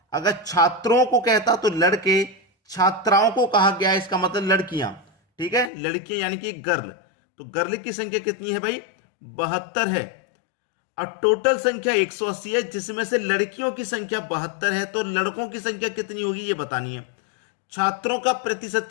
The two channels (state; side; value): drops out; right; at 5.7 s